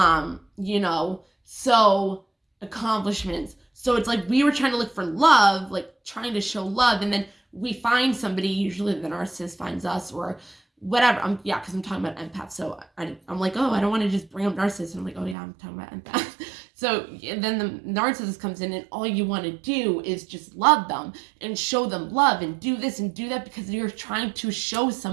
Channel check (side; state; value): left; drops out; at 15.4 s